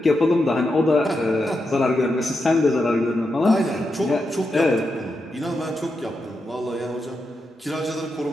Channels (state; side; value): normal; both; correlation 0.86